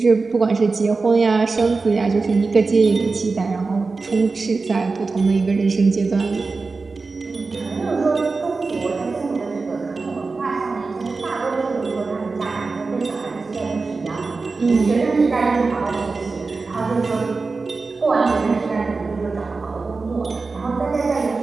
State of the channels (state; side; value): quieter; left; 4.1 dB